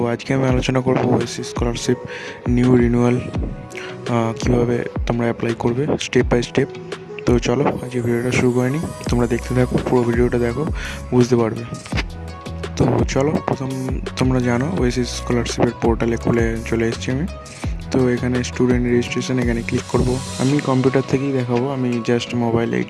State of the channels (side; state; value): both; identical; correlation 1.00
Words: আজকে আমি আলোচনা করবো ওএসসি স্কলারশিপ নিউ রিনিউয়াল কীভাবে তোমরা অ্যাপ্লাই করবে স্টেপ বাই স্টেপ। তো চলো আজকে ভিডিওটা শুরু করে নিই। তোমরা দেখতে থাকো, পুরো ভিডিওটা দেখো, বুঝতে পারবে। তো চলো, প্রথম তোমরা জানো ওএসসি স্কলারশিপের পোর্টালে খুলে চলে এসেছি আমি। তো এখানে স্টুডেন্ট রেজিস্ট্রেশন, এখানে ক্লিক করব। আমি কম্পিউটার থেকেই দেখাবো, আমি জাস্ট মোবাইলে